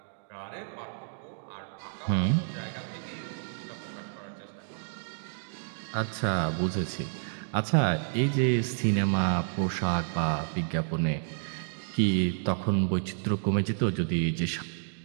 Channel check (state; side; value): silent; left; digital silence